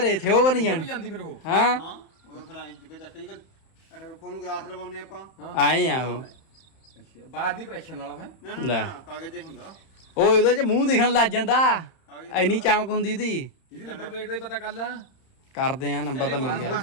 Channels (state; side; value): late; right; 31 ms